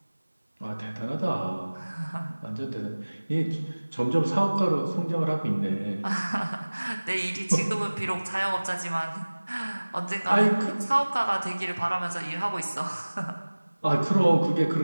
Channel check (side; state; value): both; inverted; correlation -1.00